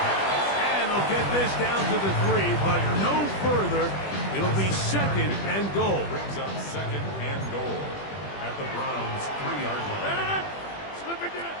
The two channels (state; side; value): late; right; 20 ms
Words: And they'll get this down to the 3, but no further. It'll be 2nd and goal. Brings up 2nd and goal at the Browns' 3-yard line.